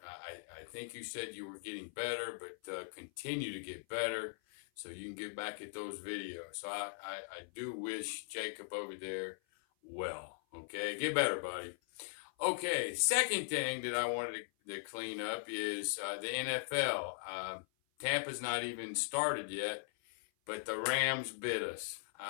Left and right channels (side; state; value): right; silent; 51 dB below the other